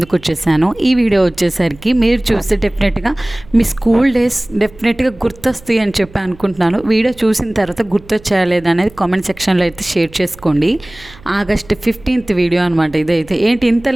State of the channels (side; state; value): right; noise; hum, 23 dB below the sound